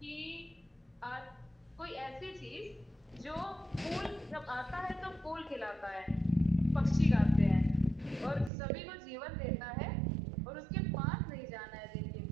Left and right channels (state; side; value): drops out; left; at 8.5 s